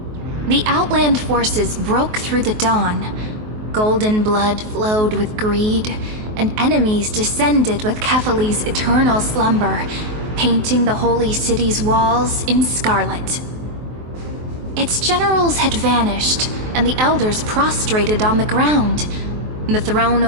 The Outland forces broke through the dawn. Golden blood flowed with greed, and enemies descended with Kefali's eternal slumber, painting the holy city's walls in scarlet. Its generals had vanished, and the elders prostrated on the ground. The throne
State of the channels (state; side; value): late; left; 23 ms